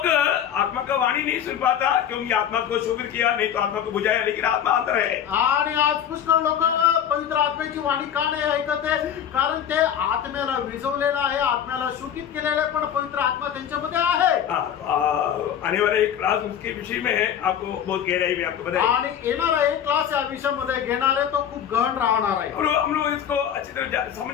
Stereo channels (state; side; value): quieter; right; 9.2 dB